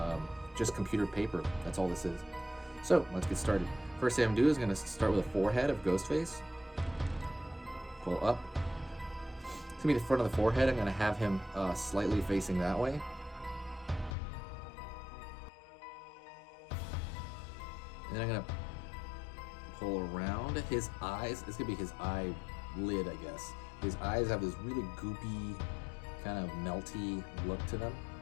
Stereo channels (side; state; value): right; drops out; at 14.2 s